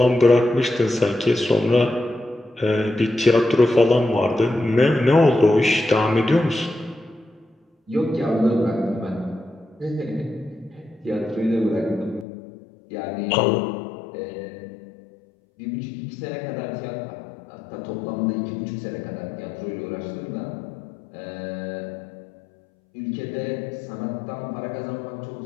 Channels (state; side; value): drops out; right; at 12.2 s